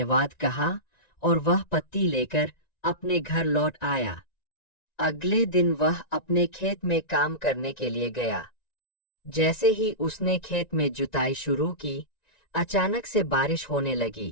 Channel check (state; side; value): late; right; 1.9 ms